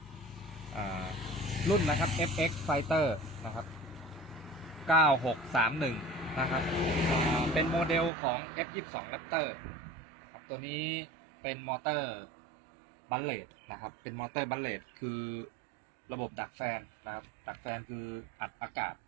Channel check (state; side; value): drops out; left; at 8.1 s